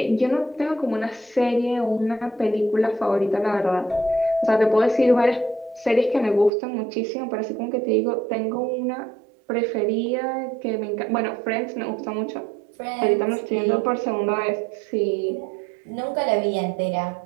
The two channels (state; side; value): drops out; left; at 6.5 s